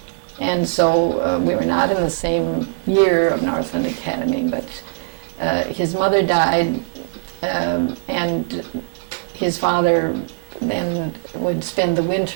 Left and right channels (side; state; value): left; silent; digital silence